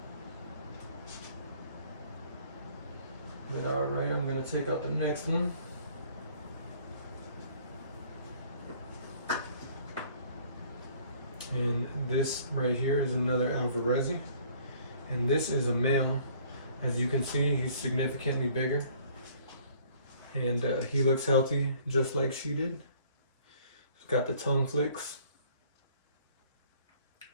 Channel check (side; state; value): both; inverted; correlation -0.57